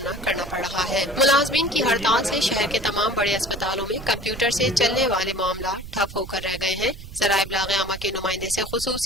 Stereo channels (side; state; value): right; noise; rumble, 13 dB below the sound